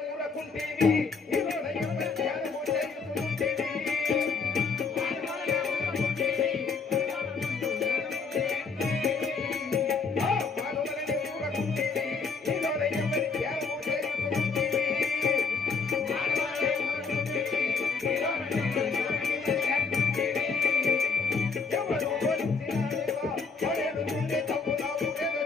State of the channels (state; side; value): quieter; right; 4.9 dB